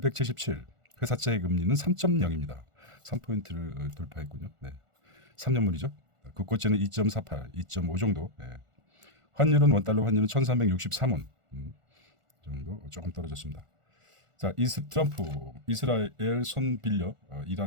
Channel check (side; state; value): left; late; 1.4 ms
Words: 회사채 금리는 3.0입니다. 3포인트를 돌파했군요. 네. 3년물이죠. 국고채는 2.48, 2.5 정도. 네. 환율은 원달러 환율은 1363원 정도 조금 떨어졌습니다. 자, 트럼프 이스라엘 손 빌려